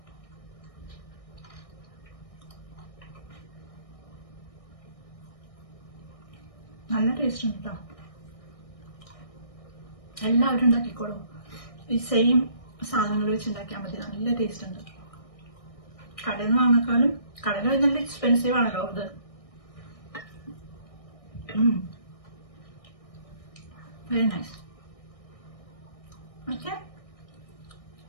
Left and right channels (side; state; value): right; late; 1.6 ms